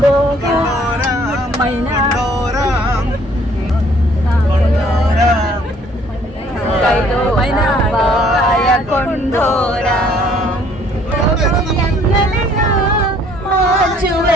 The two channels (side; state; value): both; normal; correlation 0.60